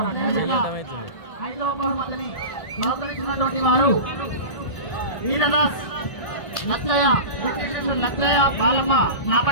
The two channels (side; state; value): right; late; 1.6 ms